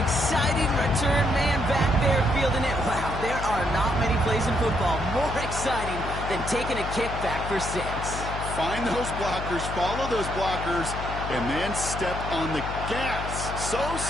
exciting return man back there fielding it, wow, there are not many plays in football more exciting than taking a kick back for 6. Find those blockers, follow those blockers, and then step on the gas. So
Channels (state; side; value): noise; left; hum, 7 dB below the sound